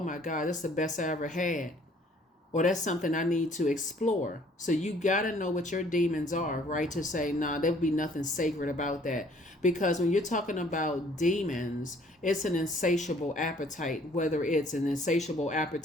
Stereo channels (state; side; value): normal; both; correlation 0.58